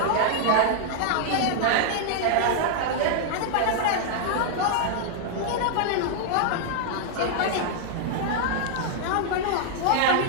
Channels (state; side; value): different; both; correlation -0.01